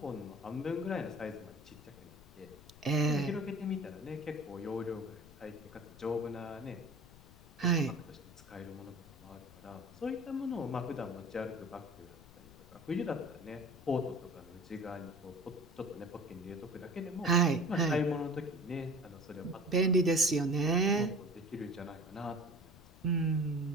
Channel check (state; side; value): noise; left; rumble, 20 dB below the sound